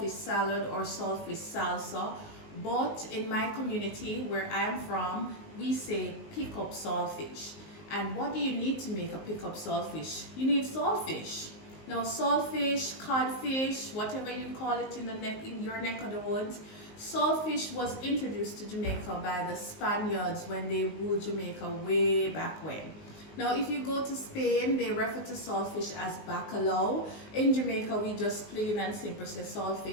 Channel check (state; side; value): late; right; 19 ms